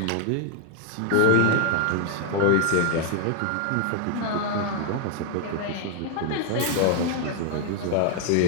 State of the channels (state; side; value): different; both; correlation 0.00